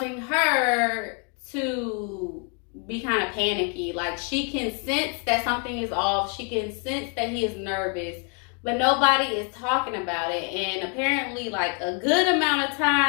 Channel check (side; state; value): right; quieter; 38.2 dB